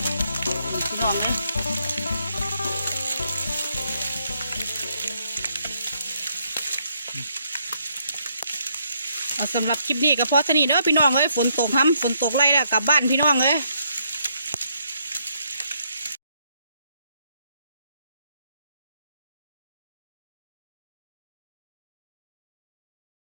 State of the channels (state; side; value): inverted; both; correlation -0.73